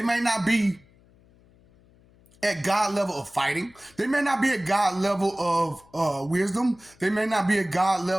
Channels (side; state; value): left; noise; hum, 29 dB below the sound